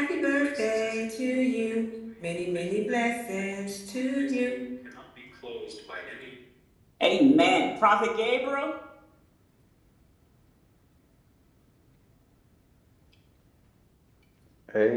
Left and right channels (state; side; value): identical; both; correlation 1.00